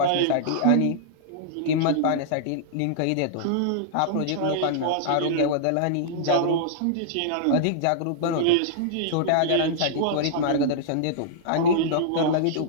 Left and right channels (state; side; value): different; both; correlation -0.02